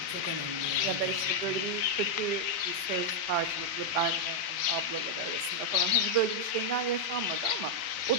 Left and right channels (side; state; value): right; late; 4.0 ms